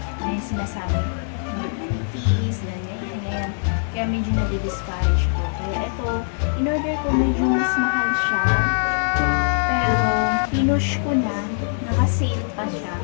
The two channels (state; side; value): silent; right; digital silence